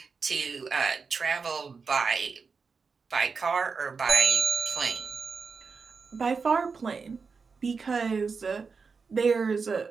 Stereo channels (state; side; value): quieter; left; 5.0 dB